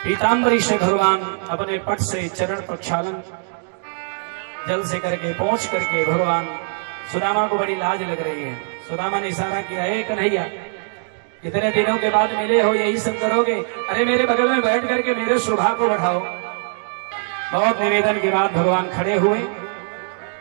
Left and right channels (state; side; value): silent; left; digital silence